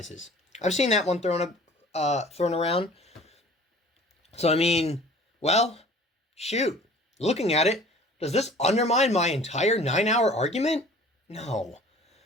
I've seen that one thrown around. So, I mean, well, shoot. Looking at it, does this undermine my entire 9-hour argument? No.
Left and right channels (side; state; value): both; normal; correlation 0.47